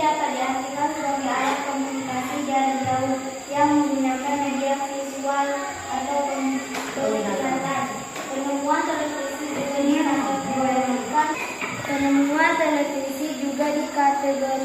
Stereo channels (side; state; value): both; identical; correlation 1.00